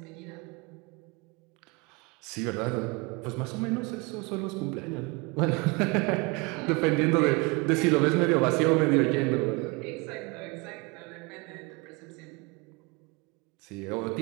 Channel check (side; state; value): left; quieter; 27.6 dB